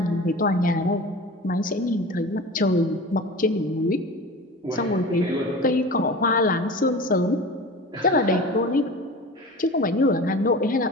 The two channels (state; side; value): normal; both; correlation 0.35